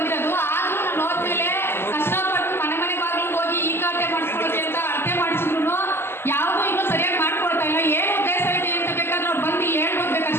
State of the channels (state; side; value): late; right; 0.12 ms